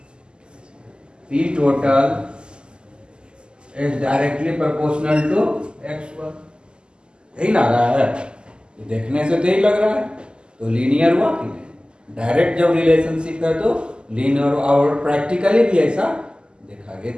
P total is directly proportional to x1, यही लग रहा है, देखने से तो यही लग रहा है, तो लीनियर हुआ कि नहीं। डायरेक्ट जब रिलेशनशिप है तो लीनियर, और प्रैक्टिकली भी ऐसा देखा गया,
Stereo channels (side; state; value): left; late; 0.048 ms